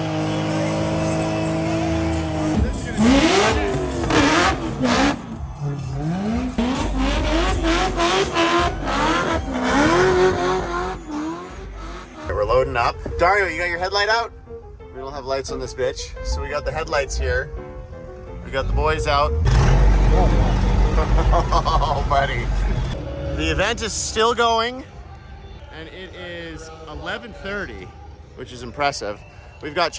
We're loading up. Dario, you got your headlight out? We don't have lights on this bitch, so we got the headlights here. We got the boys out. Oh, buddy. The event is still going, and it is 11:30, which is impressive. We've got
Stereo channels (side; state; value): both; identical; correlation 1.00